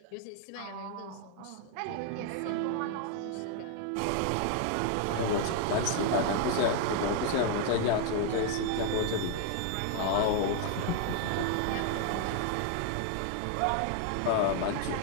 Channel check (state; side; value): different; both; correlation 0.00